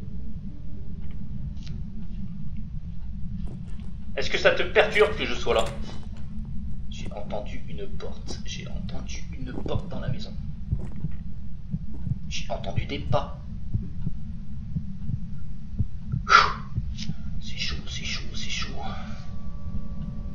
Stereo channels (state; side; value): identical; both; correlation 1.00